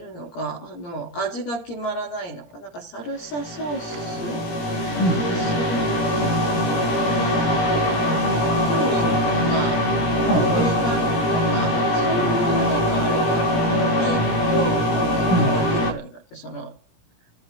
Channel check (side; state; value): right; late; 17 ms